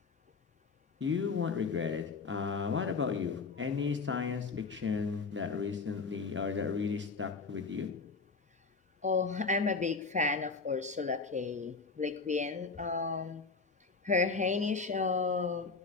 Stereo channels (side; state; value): right; quieter; 4.5 dB